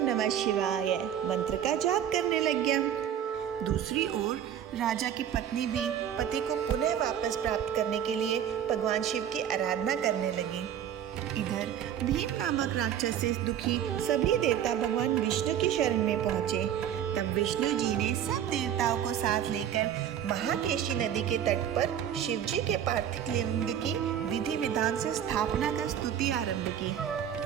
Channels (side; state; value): left; quieter; 9.7 dB